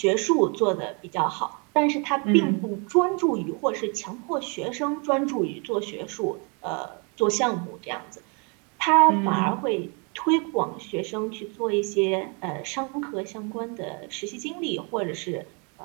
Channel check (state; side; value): quieter; left; 34.5 dB